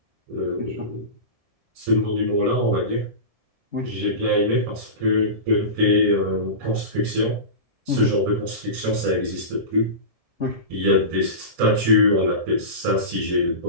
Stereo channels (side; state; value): left; late; 1.7 ms